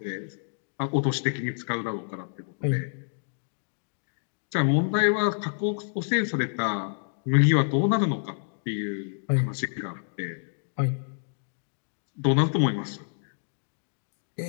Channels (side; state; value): right; silent; digital silence